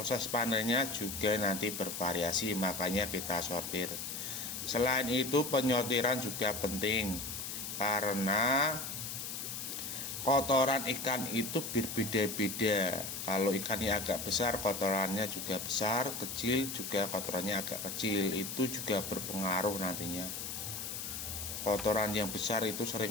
panennya juga nanti bervariasi, makanya kita sortir. Selain itu penyortiran juga penting, karena kotoran ikan itu berbeda-beda. Kalau ikannya agak besar, kotorannya juga besar, kecil juga kotorannya agak kecil. Itu juga berpengaruh nantinya. Kotoran yang besar itu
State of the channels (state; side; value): noise; left; hiss, 6 dB below the sound